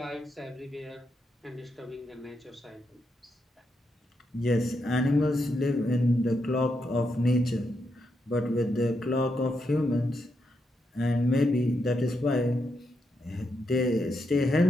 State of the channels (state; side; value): normal; both; correlation 0.82